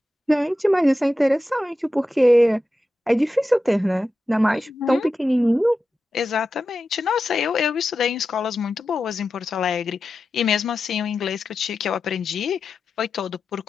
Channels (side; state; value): both; normal; correlation 0.91